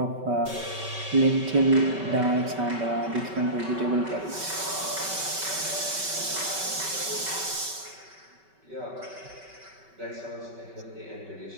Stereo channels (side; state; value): left; late; 5.2 ms